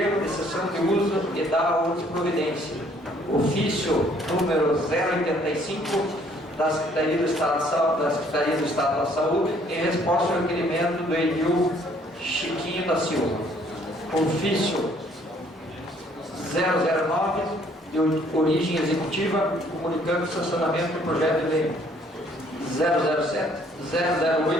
de cessão de uso e da outra providência. Ofício número 085 da Secretaria do Estado da Saúde, em resposta ao requerimento do Edil Chiquinho da Silva. Ofício 009 de origem executiva, comunicando o sancionamento do projeto de lei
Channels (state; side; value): normal; both; correlation 0.62